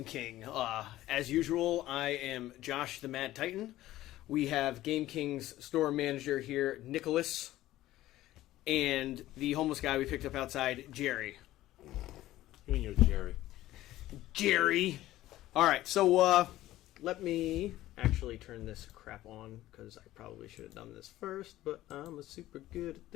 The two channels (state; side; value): quieter; right; 15.2 dB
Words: King. As usual, I am Josh the Mad Titan. We have Game King's store manager here, Nicholas, and the homeless guy we picked up outside, Jerry. You and your Jerry. Jerry! Alright, so let me actually turn this crap on, because I probably should have done this first, but I'm super good at